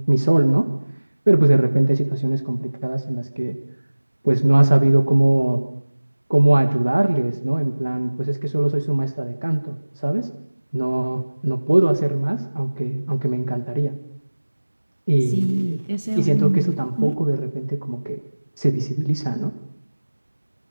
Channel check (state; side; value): inverted; both; correlation -1.00